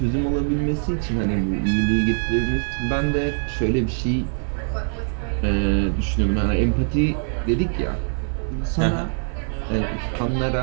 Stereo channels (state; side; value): silent; left; 60 dB below the other